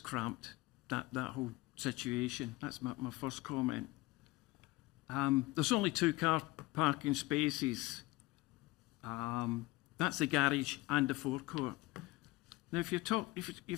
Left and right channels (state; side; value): quieter; right; 20.3 dB